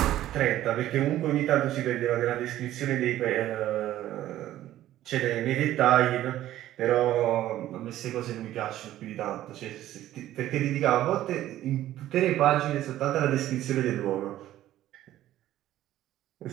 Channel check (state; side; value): quieter; left; 13.6 dB